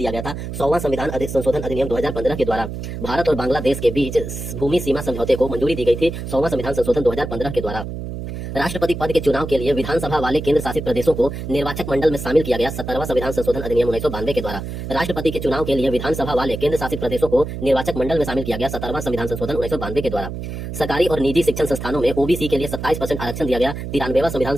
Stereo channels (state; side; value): noise; right; hum, 7 dB below the sound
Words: गया था 100वां संविधान संशोधन अधिनियम 2015 के द्वारा। भारत और बांग्लादेश के बीच भूमि सीमा समझौते को मंजूरी दी गई थी 100वां संविधान संशोधन 2015 के द्वारा। राष्ट्रपति पद के चुनाव के लिए विधानसभा वाले केंद्र शासित प्रदेशों को निर्वाचक मंडल में शामिल किया गया 17वां संविधान संशोधन अधिनियम 1992 के द्वारा। राष्ट्रपति के चुनाव के लिए विधानसभा वाले केंद्र शासित प्रदेशों को निर्वाचक मंडल में शामिल किया गया 17वां संविधान संशोधन 1992 के द्वारा। सरकारी और निजी शिक्षण संस्थानों में ओबीसी के लिए 27% आरक्षण दिया गया 93वां संविधान